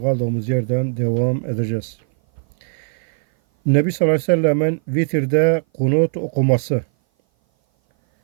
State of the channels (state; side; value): silent; left; 58 dB below the other